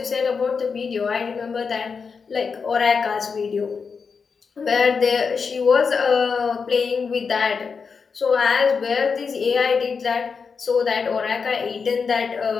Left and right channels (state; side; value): quieter; right; 5.5 dB